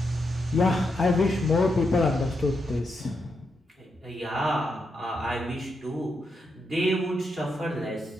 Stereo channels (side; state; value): both; normal; correlation 0.83